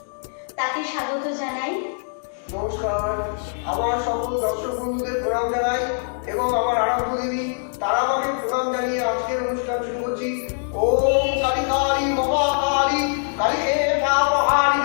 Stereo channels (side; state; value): right; silent; digital silence